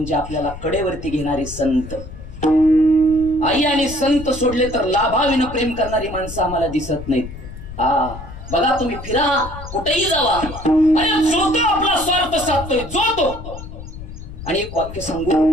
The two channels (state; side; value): noise; left; rumble, 12 dB below the sound